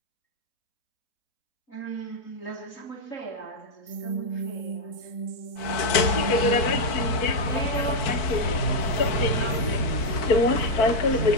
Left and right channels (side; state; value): right; late; 4.5 ms